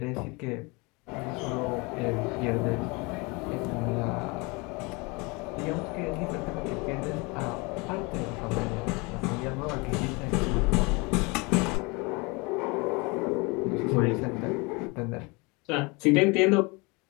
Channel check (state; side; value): quieter; right; 27.5 dB